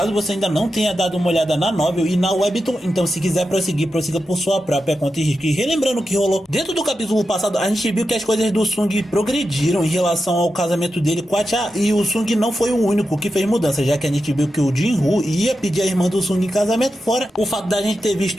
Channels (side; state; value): both; normal; correlation 0.89